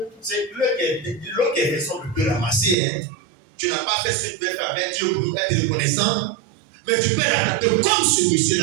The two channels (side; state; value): left; drops out; at 2.8 s